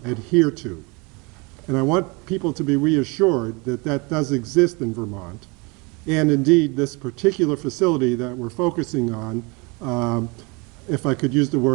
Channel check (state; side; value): quieter; left; 28.2 dB